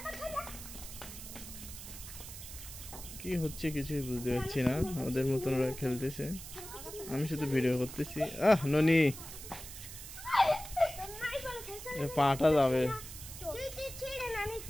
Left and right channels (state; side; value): noise; right; hiss, 12 dB below the sound